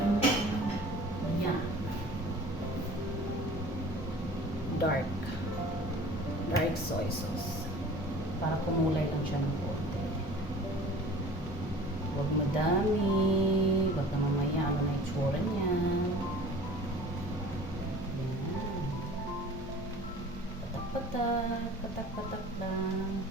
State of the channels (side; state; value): both; normal; correlation 0.44